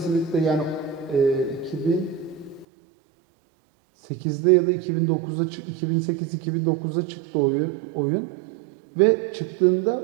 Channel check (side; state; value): left; drops out; at 2.7 s